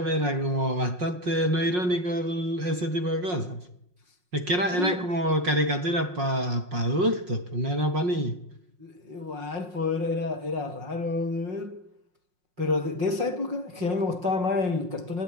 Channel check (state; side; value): late; left; 5.5 ms